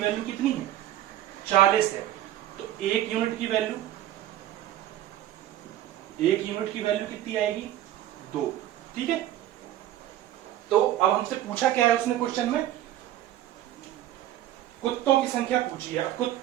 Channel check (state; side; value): quieter; left; 13.1 dB